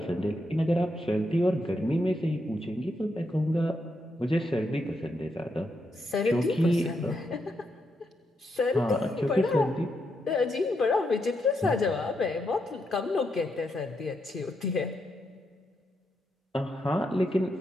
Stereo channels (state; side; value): normal; both; correlation 0.81